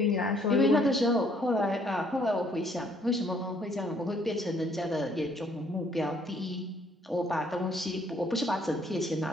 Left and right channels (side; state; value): both; normal; correlation 0.64